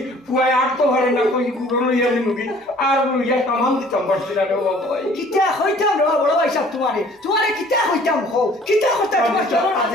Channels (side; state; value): both; normal; correlation 0.53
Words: পুয়ায় আর তো ভালো না কই গুরু লইয়া নিমুকি আর লইয়া সামান দিতাম পারছি না রে বাবা ভাই কিতা হইতাম রে বড় ভাই সাহেব তোমারে কিতা হইতাম হও কিতা হইতা তোমার চলন